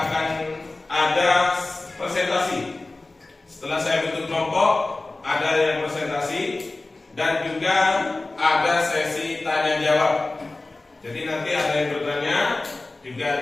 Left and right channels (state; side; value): quieter; right; 3.1 dB